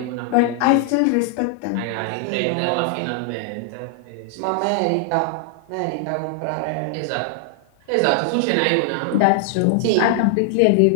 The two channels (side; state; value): both; different; correlation 0.00